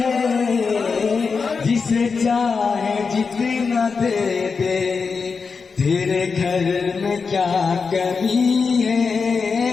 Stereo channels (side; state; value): right; quieter; 5.1 dB